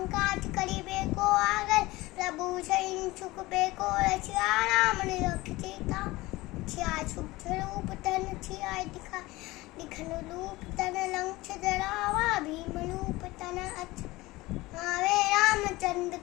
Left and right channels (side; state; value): right; quieter; 20.0 dB